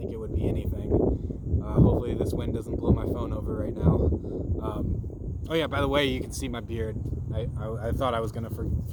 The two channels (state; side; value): identical; both; correlation 1.00